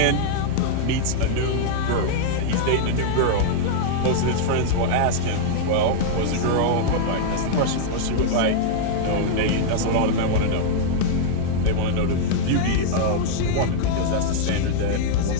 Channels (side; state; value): both; different; correlation -0.01